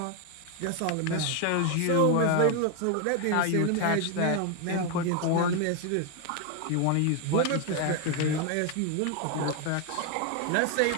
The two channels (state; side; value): different; both; correlation 0.01